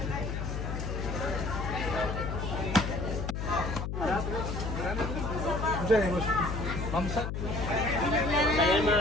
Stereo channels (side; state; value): left; noise; hum, 3 dB below the sound